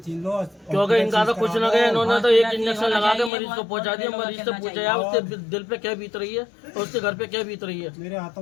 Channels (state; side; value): drops out; right; at 3.3 s